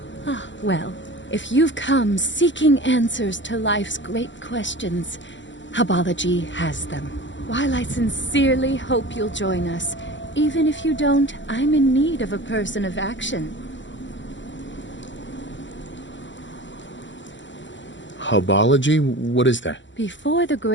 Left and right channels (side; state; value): right; late; 0.54 ms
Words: Ah, well, if you've come seeking answers to life's great questions, Hubology has them. While I sincerely hope you'll join us, even if you don't, I'm in need of a person of action. Hubology? What is that? Before the